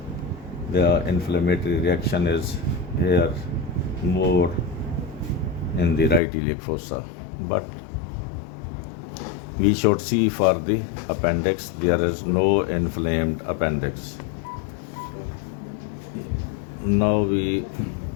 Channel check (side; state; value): right; drops out; at 6.2 s